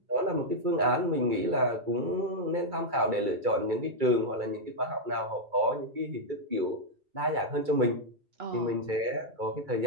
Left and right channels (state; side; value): late; left; 2.3 ms